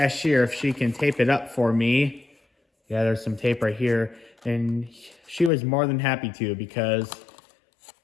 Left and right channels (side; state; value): right; drops out; at 5.5 s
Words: if she can tape it up for me. Yeah, there's some tape right here. And she was more than happy to, because